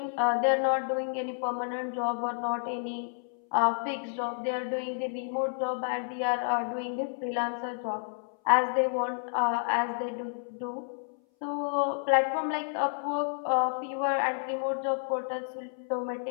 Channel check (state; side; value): silent; right; 58 dB below the other